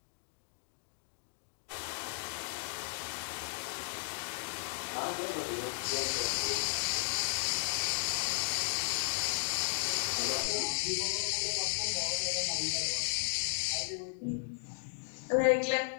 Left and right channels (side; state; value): right; silent; digital silence